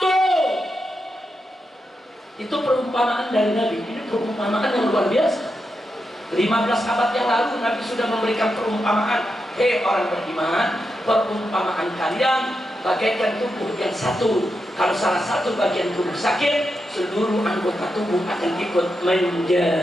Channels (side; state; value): both; normal; correlation 0.86